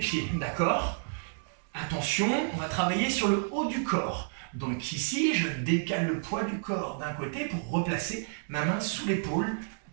d'accord? Attention, on va travailler sur le haut du corps. Donc ici, je décale le poids du corps d'un côté pour replacer ma main sous l'épaule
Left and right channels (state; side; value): silent; left; digital silence